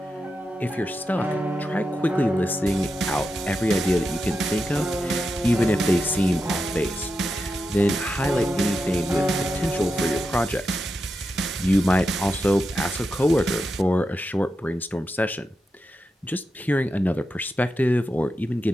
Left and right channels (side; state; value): both; normal; correlation 0.88